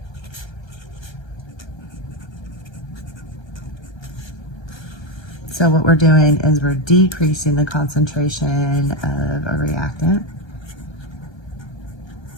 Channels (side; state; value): right; late; 1.3 ms